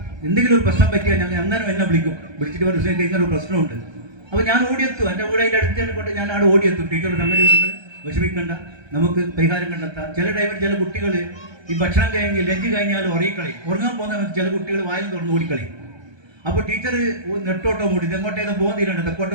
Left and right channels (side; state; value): left; late; 1.3 ms